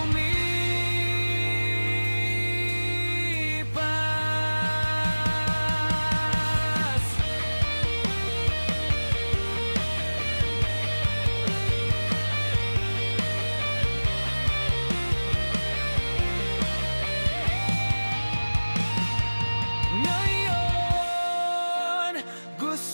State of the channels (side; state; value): both; inverted; correlation -1.00